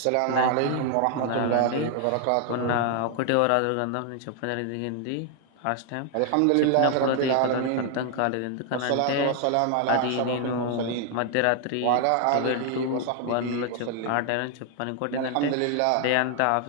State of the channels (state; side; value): different; both; correlation 0.00